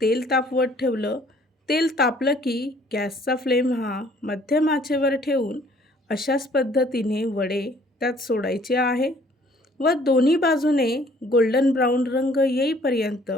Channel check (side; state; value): both; normal; correlation 0.59